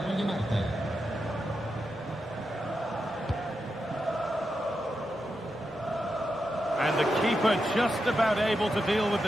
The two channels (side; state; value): both; normal; correlation 0.87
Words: the keeper just about able to deal with